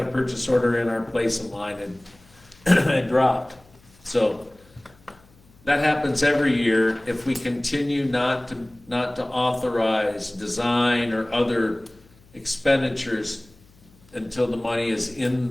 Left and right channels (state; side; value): noise; left; hum, 28 dB below the sound